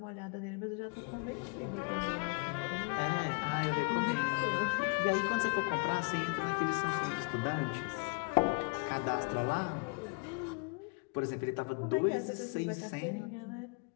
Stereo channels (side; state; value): right; quieter; 32.4 dB